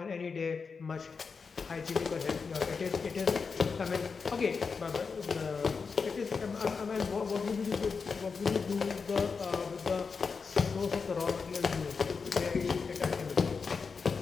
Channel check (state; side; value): quieter; right; 5.2 dB